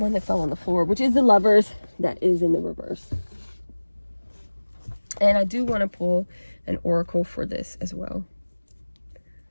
that fell on the floor, which is the Lovers, that is in the reverse. And I do want to pull an oracle for this as well.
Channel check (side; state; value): both; inverted; correlation -1.00